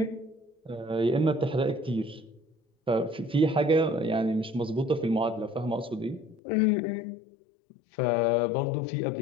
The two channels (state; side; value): drops out; right; at 6.4 s